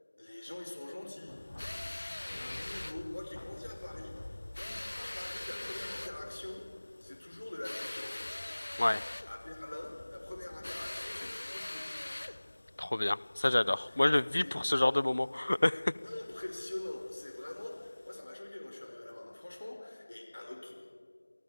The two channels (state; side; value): inverted; both; correlation -1.00